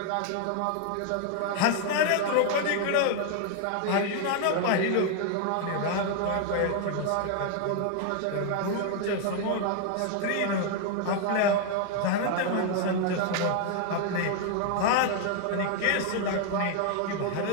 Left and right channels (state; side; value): different; both; correlation 0.00